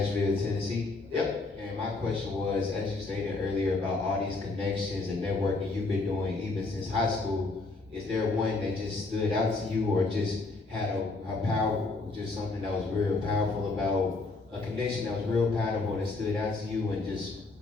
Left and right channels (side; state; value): right; quieter; 3.5 dB